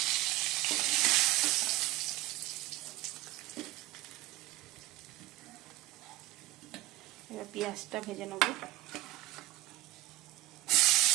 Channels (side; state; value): left; quieter; 17.6 dB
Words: এবার পেঁয়াজটা ভেজে নেব।